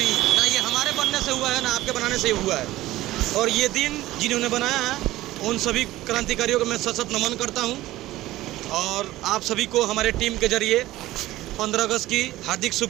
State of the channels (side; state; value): left; quieter; 16.4 dB